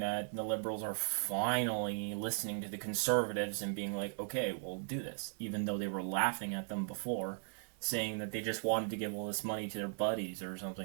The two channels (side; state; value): left; silent; 53 dB below the other